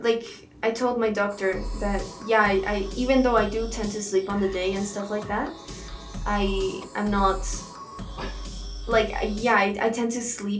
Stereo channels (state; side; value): identical; both; correlation 1.00